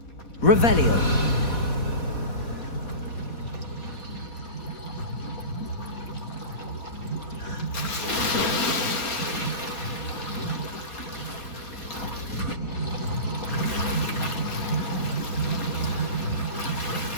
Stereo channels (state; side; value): late; right; 4.1 ms